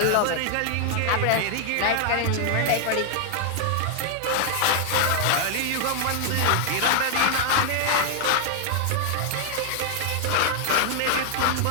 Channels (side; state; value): both; different; correlation 0.00